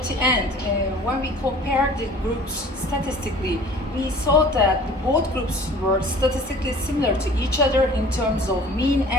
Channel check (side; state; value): both; normal; correlation 0.46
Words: the end, when we compared the groups statistically, we saw that both groups were statistically similar to each other in terms of mean